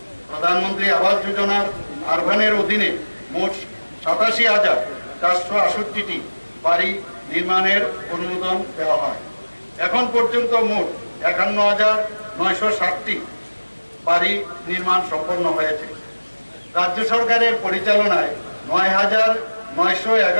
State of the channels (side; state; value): both; inverted; correlation -1.00